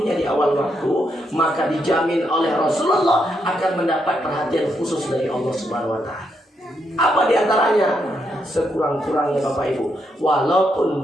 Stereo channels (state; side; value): normal; both; correlation 0.79